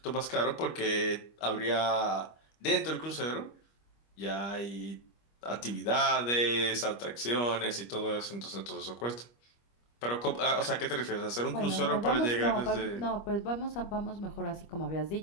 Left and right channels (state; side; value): late; right; 25 ms